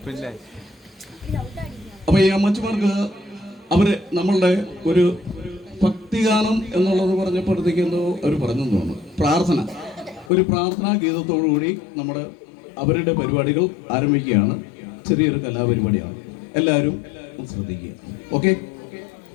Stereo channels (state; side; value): drops out; right; at 10.3 s